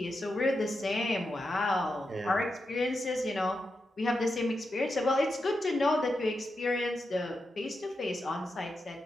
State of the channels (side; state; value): both; normal; correlation 0.87